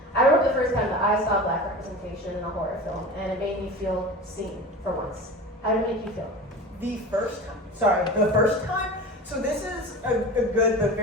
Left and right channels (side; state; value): both; normal; correlation 0.33